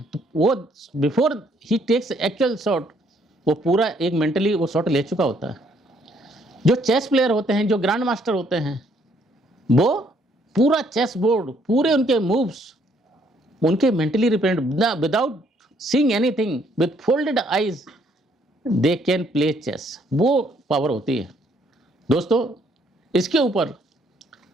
तो वो बिफोर ही टेक्स एक्चुअल शॉट, वो पूरा एक मेंटली वो शॉट ले चुका होता है। जो चेस प्लेयर होते हैं, जो ग्रैंड मास्टर होते हैं, वो पूरा चेस बोर्ड, पूरे उनके मूव्स उनके mentally represent, without seeing anything, with folded eyes they can play chess. वो पावर होती है। दोस्तों, इसके ऊपर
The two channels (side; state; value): both; normal; correlation 0.67